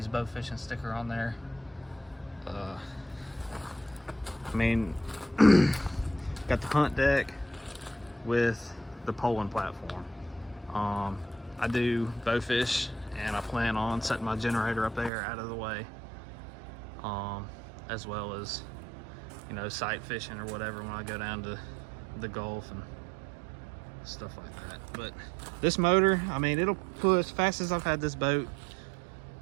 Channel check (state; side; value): drops out; left; at 15.1 s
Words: bow fishing sticker on there. I mean, got the hunt deck with the poling platform. I do bow fish, and I plan on setting my generator up there out of the way, as well as, you know, sight fishing or whatever when I go down to the Gulf and stuff like that. But this motor, I mean, it'll push, fastest I've had this boat